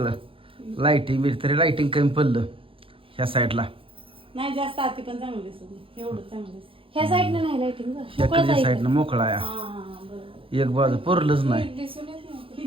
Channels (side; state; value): left; late; 0.26 ms